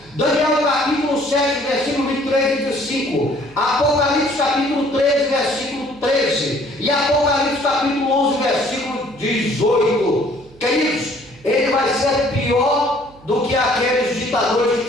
Daniel, capítulo 7, versículo 23 e 25. Apocalipse, capítulo 13, versículo 13. E Apocalipse, capítulo 11, versículo 18. Queridos, ele vai ser pior do que aqueles ditadores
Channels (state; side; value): noise; right; hum, 24 dB below the sound